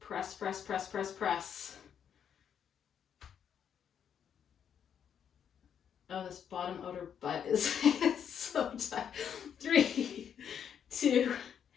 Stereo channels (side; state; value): right; quieter; 8.3 dB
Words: press, press, press, press. Oh, this bottom outer butt is so tight. 3, 2,